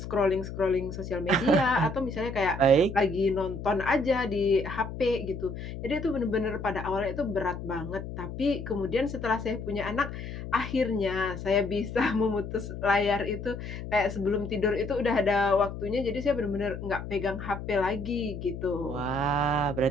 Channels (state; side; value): noise; left; hum, 8 dB below the sound